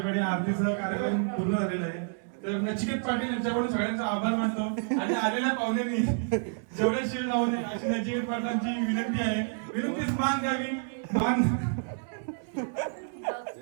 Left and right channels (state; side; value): silent; left; digital silence